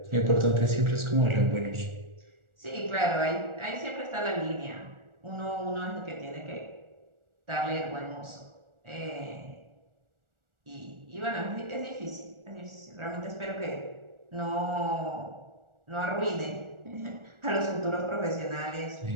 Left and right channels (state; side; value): late; left; 1.4 ms